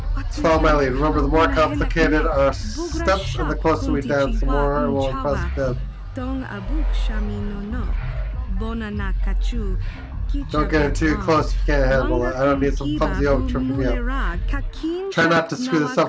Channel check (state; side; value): identical; both; correlation 1.00